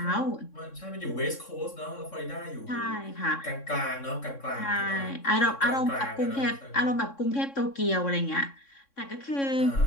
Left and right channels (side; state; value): right; late; 3.6 ms